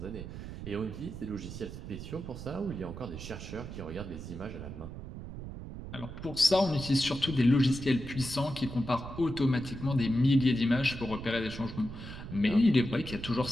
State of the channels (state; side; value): noise; right; rumble, 10 dB below the sound